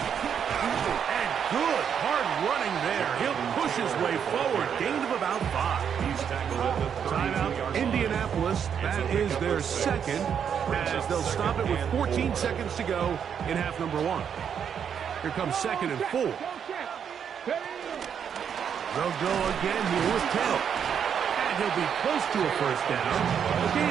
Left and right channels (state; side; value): quieter; left; 7.9 dB